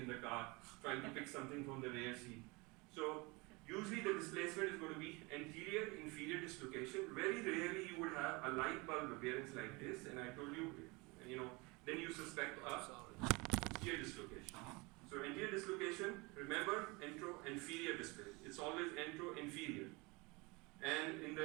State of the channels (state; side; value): quieter; left; 26.3 dB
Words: the car trying to pick something from the rear seat. So usually the displacement is going to be anterior inferior dislocation. Very rarely you would have a light bulb appearance like this, and I told you, then you suspect a posterior dislocation. So anterior dislocation, remember, antro-inferior displacement. It's always antro-inferior. And in